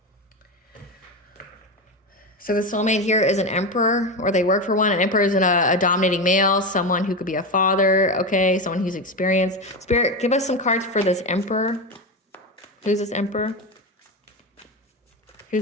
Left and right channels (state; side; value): normal; both; correlation 0.17